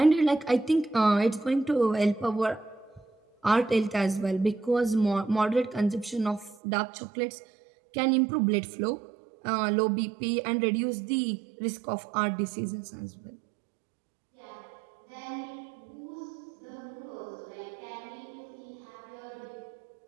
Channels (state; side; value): drops out; left; at 6.6 s